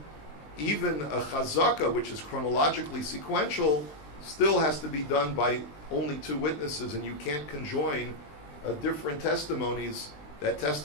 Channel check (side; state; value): right; late; 20 ms